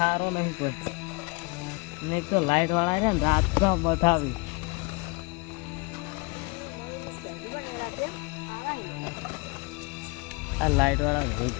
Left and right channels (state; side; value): quieter; right; 28.7 dB